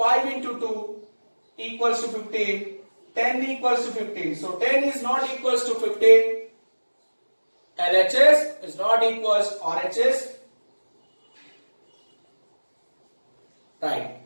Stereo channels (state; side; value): inverted; both; correlation -1.00